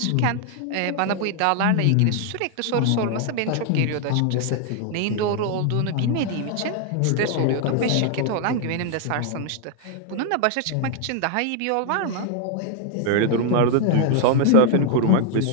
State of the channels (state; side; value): different; both; correlation 0.00